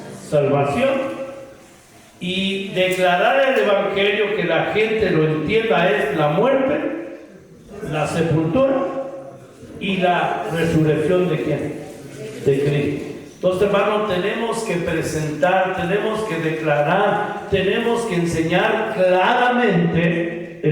salvación. Y declarar el evangelio, que la gente lo entienda, es la muerte, la sepultura y la resurrección de ¿quién? De Cristo. Entonces, hermanos, tenemos que presentar, tenemos que declarar, tenemos que enseñar claramente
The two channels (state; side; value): identical; both; correlation 1.00